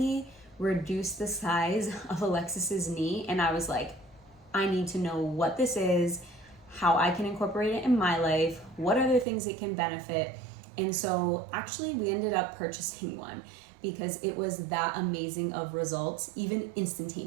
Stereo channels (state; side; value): drops out; left; at 9.2 s